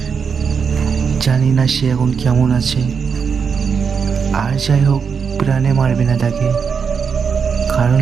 জানি না সে এখন কেমন আছে। আর যাই হোক, প্রাণে মারবে না তাকে, কারণ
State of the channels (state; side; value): quieter; left; 6.2 dB